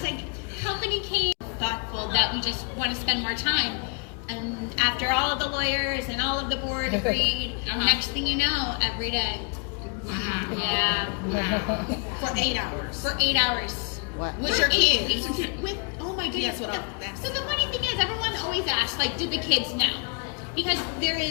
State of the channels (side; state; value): right; quieter; 37.4 dB